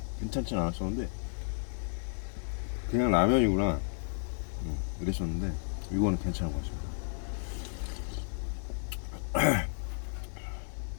괜찮진 않았었는데, 그냥 라면이구나 이랬었는데 이거는 괜찮은 것 같습니다.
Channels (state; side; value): silent; right; digital silence